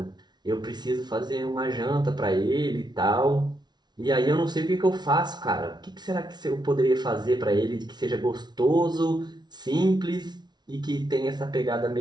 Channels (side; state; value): left; late; 0.20 ms